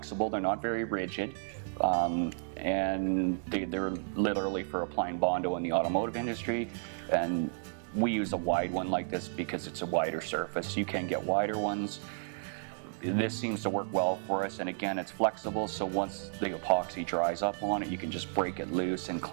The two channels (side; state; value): left; silent; digital silence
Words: They're not very rigid, and they're literally for applying Bondo in the automotive industry. And we use a wide one like this because it's a wider surface. You can get wider ones. This seems to work well for us, and again, it's flexible, so once the epoxy dries up on it, you can just break it loose and